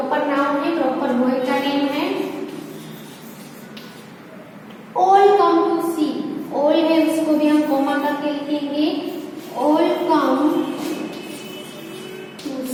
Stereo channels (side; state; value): both; identical; correlation 1.00